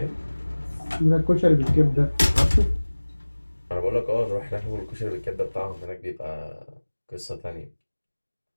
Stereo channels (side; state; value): both; inverted; correlation -1.00